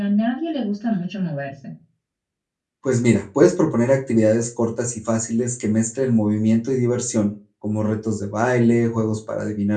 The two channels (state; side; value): identical; both; correlation 1.00